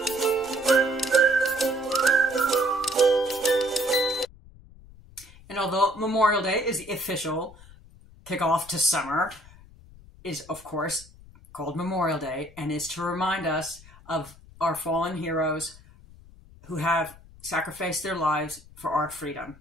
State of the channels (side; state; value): left; noise; rumble, 22 dB below the sound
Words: And although Memorial Day is the official kickoff to summer, is of course called Memorial Day and is to remind us of our fallen heroes who have sacrificed their lives for our freedom.